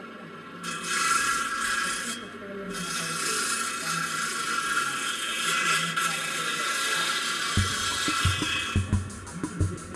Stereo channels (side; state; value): both; identical; correlation 1.00